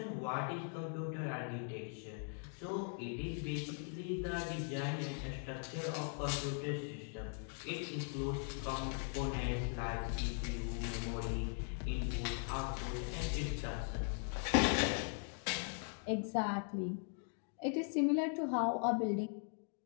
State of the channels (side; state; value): right; silent; 51 dB below the other